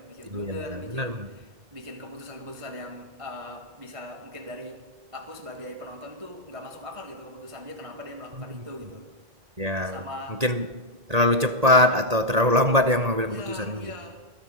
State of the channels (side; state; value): left; late; 1.8 ms